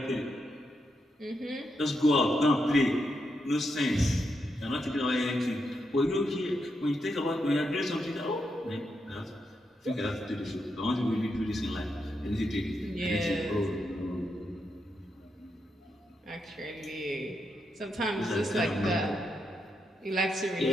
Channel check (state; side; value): normal; both; correlation 0.83